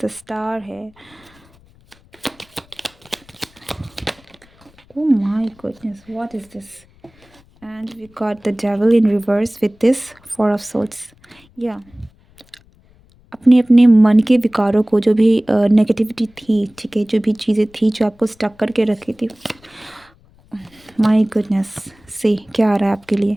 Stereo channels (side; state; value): left; noise; rumble, 29 dB below the sound